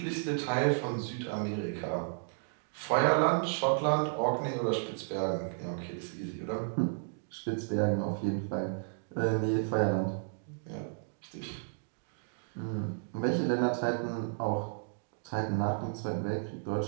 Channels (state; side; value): silent; left; digital silence